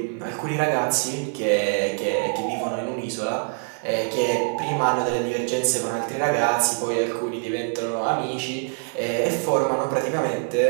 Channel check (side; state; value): left; silent; 62 dB below the other